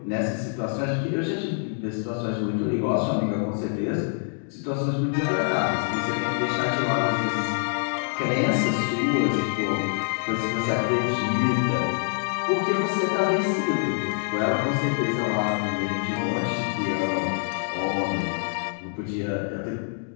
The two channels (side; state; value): right; silent; digital silence